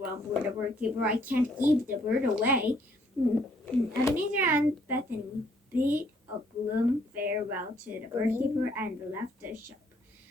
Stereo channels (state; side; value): normal; both; correlation 0.66